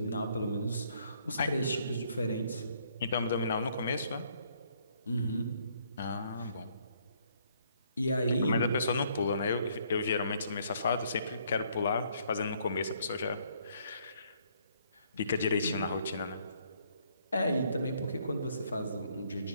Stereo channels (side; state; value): both; inverted; correlation -0.67